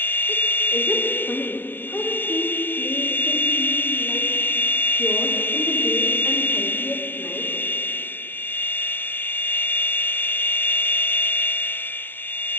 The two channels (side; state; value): right; late; 0.094 ms